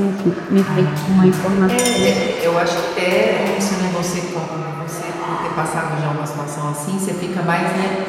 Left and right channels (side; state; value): both; identical; correlation 1.00